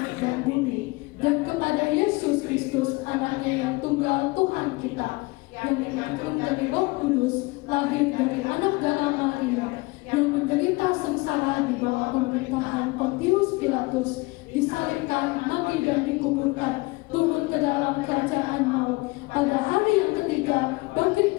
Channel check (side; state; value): right; quieter; 24.1 dB